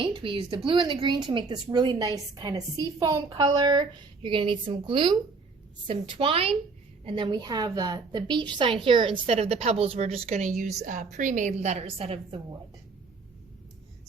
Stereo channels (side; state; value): left; quieter; 4.3 dB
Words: We used the blue and the green to make this really nice kind of seafoam color. You're going to need some glue, some twine, and then we have the beach sign here. Instead of the pebbles, we're just going to use pre-made letters out of the wood.